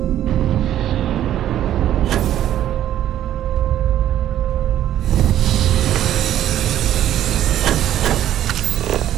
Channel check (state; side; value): quieter; left; 11.8 dB